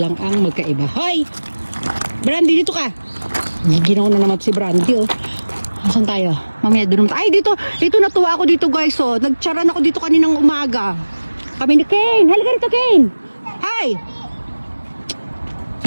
ang magkaiba. Hoy! Brandy, dito ka. Ginaw na naman si Brandy oh. Asan tayo? Mamaya doon naman. Ay, dito natuwa ako dito guys oh. Nagcharan ako dito kaninang umaga. Kami ni Kane. Halika rito, Kane. Hi!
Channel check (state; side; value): inverted; both; correlation -1.00